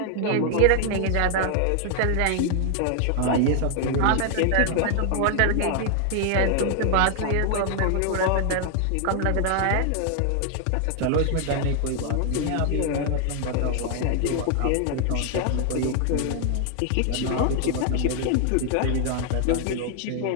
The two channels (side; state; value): both; different; correlation 0.00